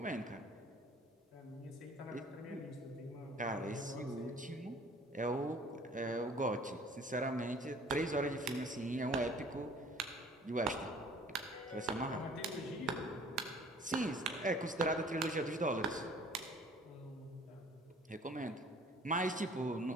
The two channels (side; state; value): both; normal; correlation 0.52